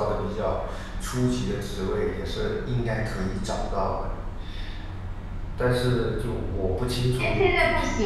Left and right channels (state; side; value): identical; both; correlation 1.00